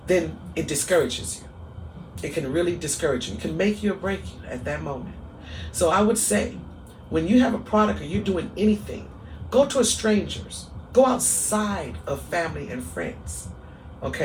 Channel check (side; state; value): both; identical; correlation 1.00